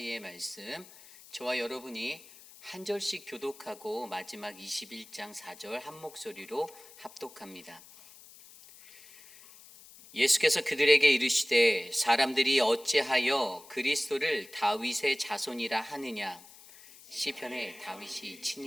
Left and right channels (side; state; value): left; noise; hiss, 21 dB below the sound